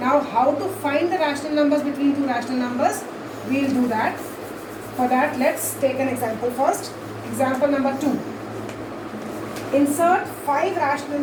how to find the rational numbers between two rational numbers? We will do that. For that, let's take an example first. Example number 2. Insert 5 rational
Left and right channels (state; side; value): identical; both; correlation 1.00